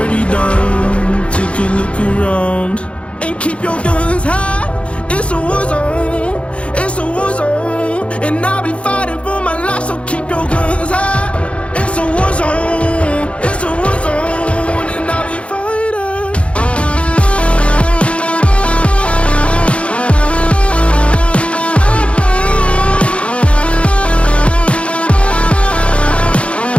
done. Take a look around and keep your guns high. It's a war zone. It's a war zone, and I'll be fighting for my life. So keep your guns high. It's a war zone. It's a war zone, and I'll be fighting.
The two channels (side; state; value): right; late; 0.061 ms